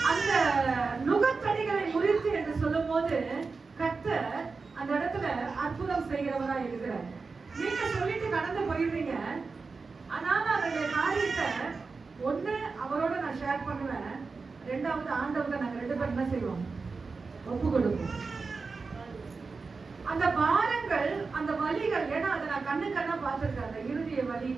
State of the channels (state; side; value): quieter; left; 4.4 dB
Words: அந்த நுகத்தடிகளை முறித்து என்று சொல்லும் போது கர்த்தர் அந்த இடத்துல அற்புதம் செய்கிறவரா இருக்கிறார். நீங்க சொல்லிட்டு கடந்து போயிடுறீங்க. ஆனாலும் அவருடைய காரியத்தை ஒண்ணு அவரோட நான் ஷேர் பண்ணுவேன், ரெண்டாவது ஆண்டவங்க நாங்க 2 பேரும் என்ன செய்வோம், ஒப்பு கொடுப்போம். அந்த பாரங்கள், அந்த வலிகள், ஏன்னா அதை நான் கண்ணா பார்த்திருக்கேன். அந்த இறுதிய வலி,